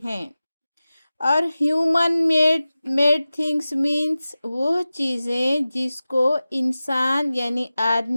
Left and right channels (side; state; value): both; inverted; correlation -0.96